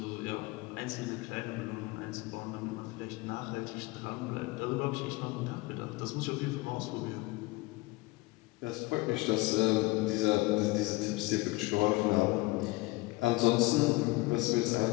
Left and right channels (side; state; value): right; quieter; 22.0 dB